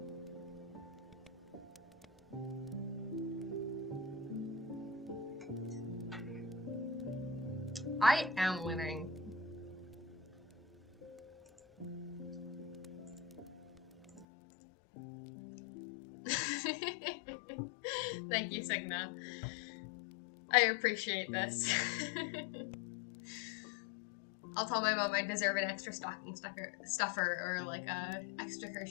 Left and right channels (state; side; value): drops out; right; at 14.2 s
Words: I am winning. Thank you, Signa. I appreciate this. I'll tell my mom I deserve an extra stocking stuffer or like a extra